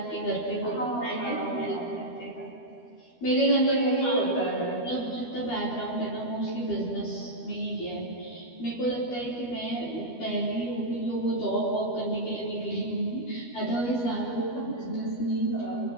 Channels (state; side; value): late; right; 12 ms